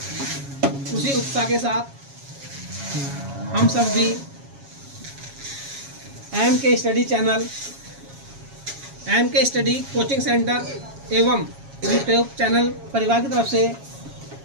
उसी उत्साह के साथ हम सब भी MK study channel, MK study coaching centre एवं यूट्यूब चैनल परिवार की तरफ से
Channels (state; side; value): late; left; 7.3 ms